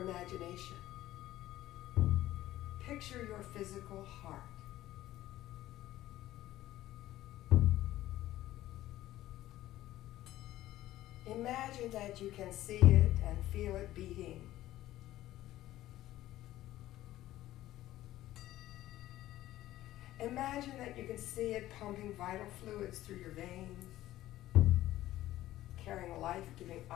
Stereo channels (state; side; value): quieter; right; 14.8 dB